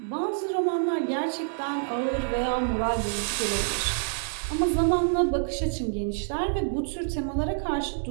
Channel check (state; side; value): silent; left; 60 dB below the other